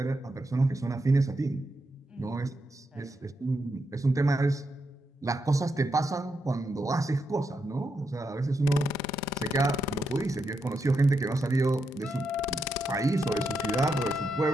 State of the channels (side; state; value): both; normal; correlation 0.83